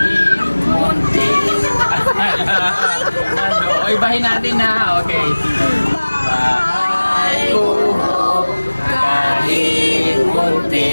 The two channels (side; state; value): both; inverted; correlation -1.00